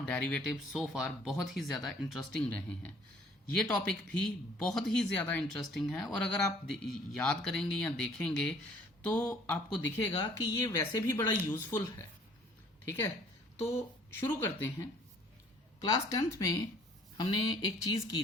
डेरिवेटिव सो फार बहुत ही ज़्यादा इंटरेस्टिंग रहे हैं। ये टॉपिक भी बहुत ही ज़्यादा इंटरेस्टिंग है और अगर आप याद करेंगे या देखेंगे तो आपको दिखेगा कि ये वैसे भी बड़ा यूज़फुल है। ठीक है, तो शुरू करते हैं। क्लास 10th में हमने एक चीज़ की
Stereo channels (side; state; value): both; normal; correlation 0.57